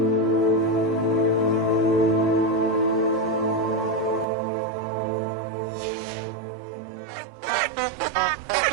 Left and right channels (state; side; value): drops out; left; at 4.2 s